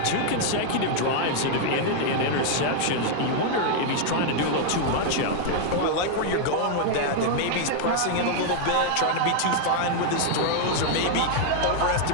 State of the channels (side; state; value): both; different; correlation 0.00